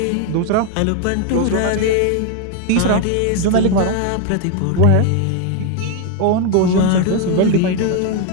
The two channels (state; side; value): different; both; correlation 0.01